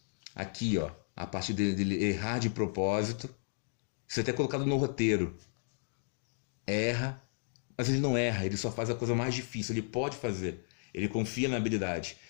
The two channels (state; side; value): silent; right; digital silence